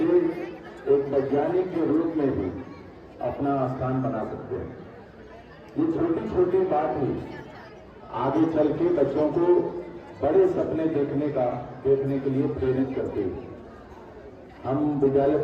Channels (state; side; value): identical; both; correlation 1.00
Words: एक वैज्ञानिक के रूप में भी अपना स्थान बना सकते हैं। ये छोटी छोटी बात ही आगे चल के बच्चों को बड़े सपने देखने के लिए प्रेरित करती है। हम विद्यालय